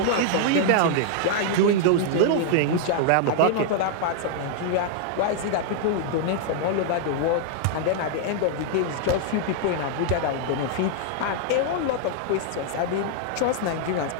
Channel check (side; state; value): both; different; correlation 0.00